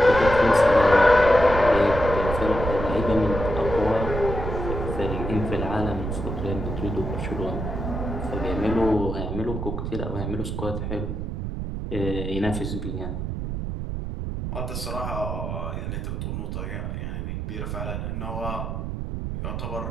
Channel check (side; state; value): right; noise; rumble, 4 dB below the sound